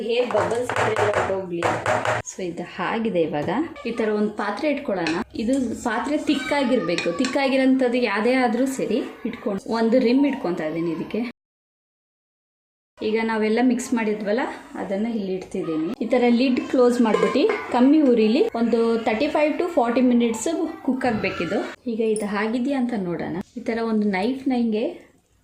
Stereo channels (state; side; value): identical; both; correlation 1.00